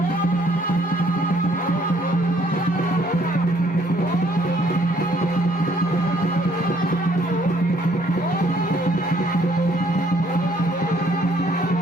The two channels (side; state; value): both; normal; correlation 0.64